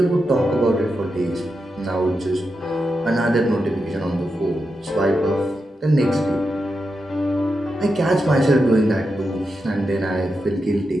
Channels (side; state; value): both; normal; correlation 0.87